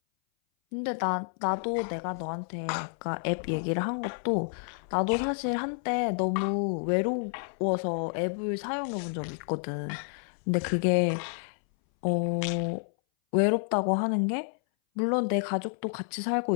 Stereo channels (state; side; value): silent; right; 58 dB below the other